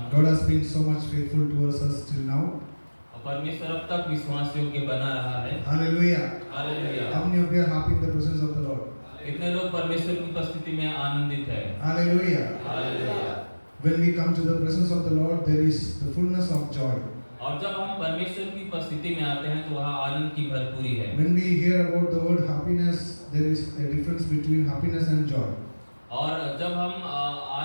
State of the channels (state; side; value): inverted; both; correlation -1.00